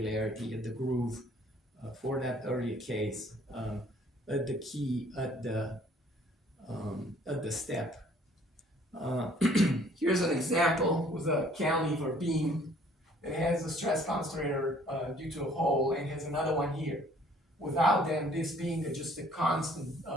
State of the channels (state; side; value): normal; both; correlation 0.58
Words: at the groove for that earlier case, at the key, at the step. Here's an example with a cantilever beam that has a stress concentrator due to a hole, and has another one here. Without them, this being just a constant